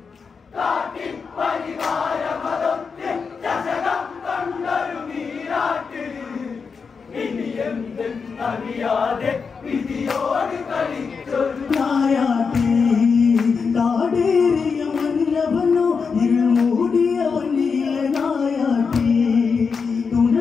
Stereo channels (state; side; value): quieter; right; 5.4 dB